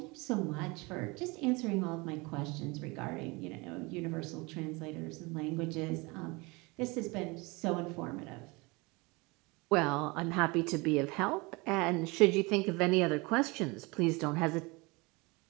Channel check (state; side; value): quieter; left; 26.0 dB